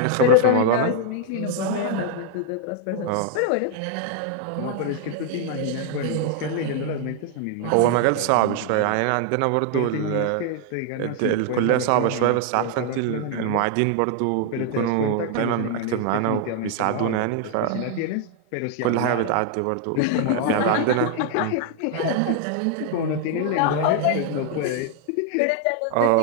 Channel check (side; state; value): both; different; correlation 0.00